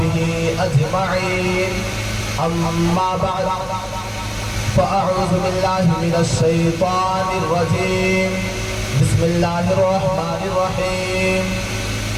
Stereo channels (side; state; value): both; identical; correlation 1.00